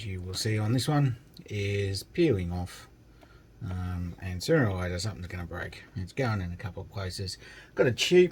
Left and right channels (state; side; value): identical; both; correlation 1.00